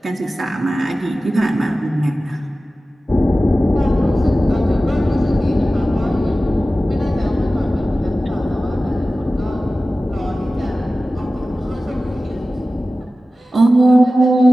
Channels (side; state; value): both; normal; correlation 0.95